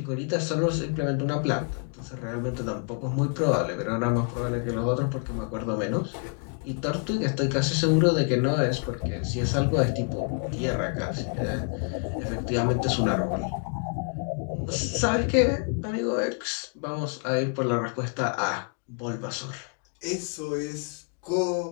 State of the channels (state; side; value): quieter; right; 39.0 dB